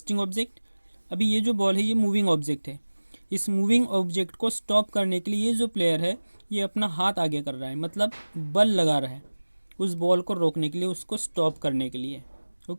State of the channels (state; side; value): inverted; both; correlation -1.00